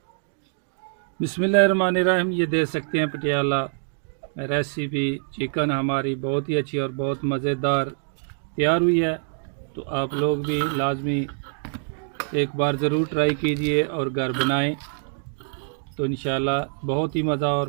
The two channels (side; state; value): left; silent; digital silence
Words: बिस्मिल्लाहिर्रहमानिर्रहीम। ये देख सकते हैं पटियाला रेसिपी चिकन हमारी बहुत ही अच्छी और बहुत मज़ेदार तैयार हुई है। तो आप लोग भी लाजमी एक बार ज़रूर ट्राई कीजिए और घर बनाएं, तो इंशाल्लाह बहुत ही मज़ा और